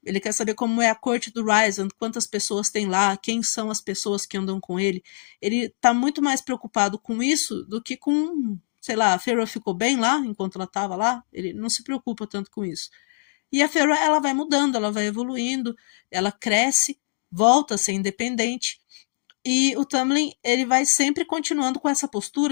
Ele quer saber como é a corte do Rysand, quantas pessoas tem lá, quem são as pessoas que andam com ele. Ele está muito mais preocupado com isso do que com, sei lá, a Feyre ficou bem lá enquanto ela estava lá. Ele não se preocupa tanto com isso. E a Feyre ela vai mudando, ela vai evoluindo, ela cresce, volta a ser independente. E o Tamlin, ele vai sempre continuando com essa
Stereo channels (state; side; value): silent; right; digital silence